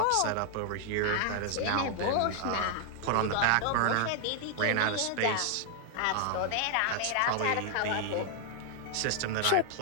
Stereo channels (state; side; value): different; both; correlation 0.00